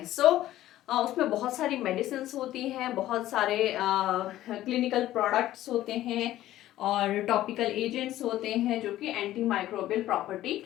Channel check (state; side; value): quieter; right; 14.2 dB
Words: सो उसमें बहुत सारी मेडिसिन होती हैं, बहुत सारे क्लिनिकल प्रोडक्ट्स होते हैं और टॉपिकल एजेंट्स होते हैं जो कि एंटी माइक्रोबियल प्रॉपर्टी